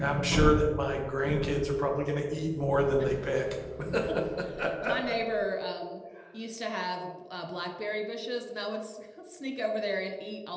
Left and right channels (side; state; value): both; identical; correlation 1.00